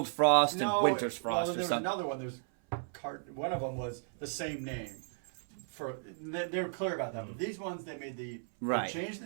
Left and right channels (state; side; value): silent; left; 55 dB below the other